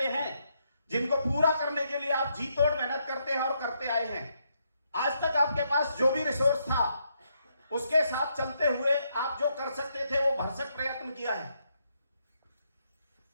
हैं जिनको पूरा करने के लिए आप जी तोड़ मेहनत करते हैं और करते आए हैं, आज तक आपके पास जो भी रिसोर्स था उसके साथ चलते हुए आप जो कर सकते थे वो भरसक प्रयत्न किया है,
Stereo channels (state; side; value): inverted; both; correlation -0.77